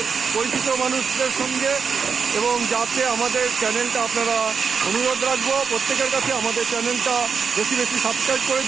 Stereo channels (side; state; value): left; quieter; 5.8 dB